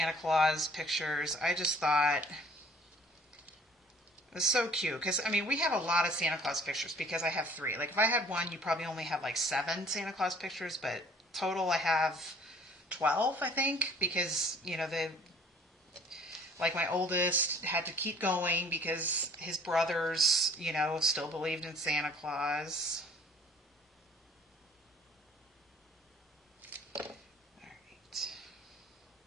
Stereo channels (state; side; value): normal; both; correlation 0.54